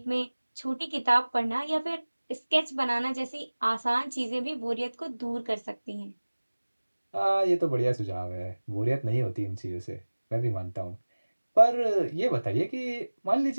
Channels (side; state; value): both; inverted; correlation -1.00